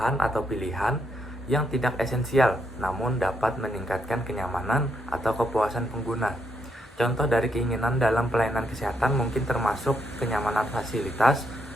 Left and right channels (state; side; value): normal; both; correlation 0.77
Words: atau pilihan yang tidak esensial, namun dapat meningkatkan kenyamanan atau kepuasan pengguna. Contoh dari keinginan dalam pelayanan kesehatan mungkin termasuk kenyamanan fasilitas,